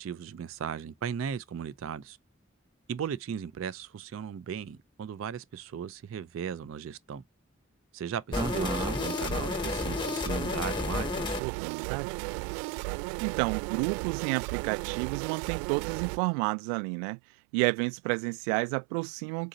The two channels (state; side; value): drops out; left; at 11.4 s